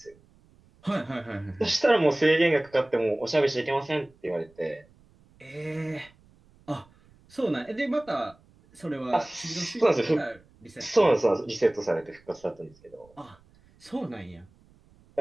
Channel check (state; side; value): noise; right; rumble, 29 dB below the sound